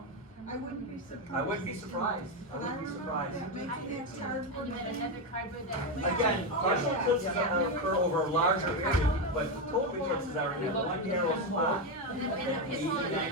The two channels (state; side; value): normal; both; correlation 0.09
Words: I wouldn't be surprised. I wouldn't be surprised, I But I wouldn't be remember surprised. that making that cardboard. And then another cardboard that. Again, partial eclipses occur over a larger area, but total eclipses are in that one narrow spot. And the people went